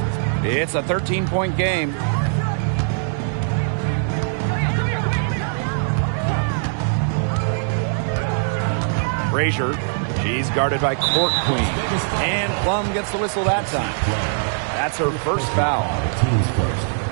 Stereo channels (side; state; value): left; silent; 64 dB below the other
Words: It's a 13-point game. Frazier. She's guarded by Court Queen. And Plum gets the whistle that time. That's her first foul. Team's first.